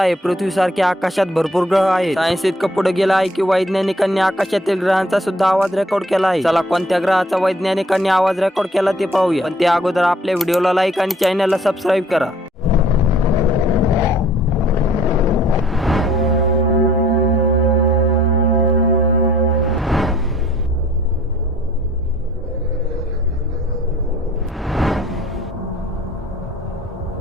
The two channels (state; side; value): normal; both; correlation 0.57